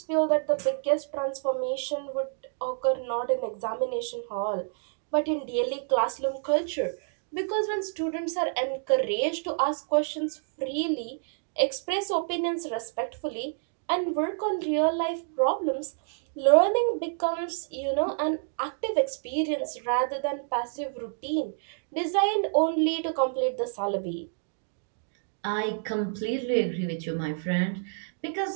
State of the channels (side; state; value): left; silent; digital silence